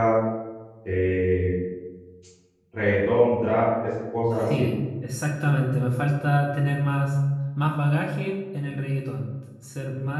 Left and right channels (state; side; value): identical; both; correlation 1.00